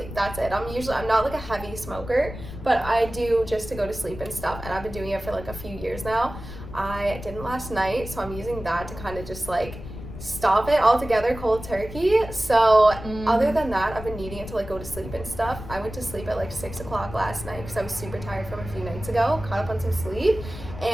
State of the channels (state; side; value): noise; left; rumble, 12 dB below the sound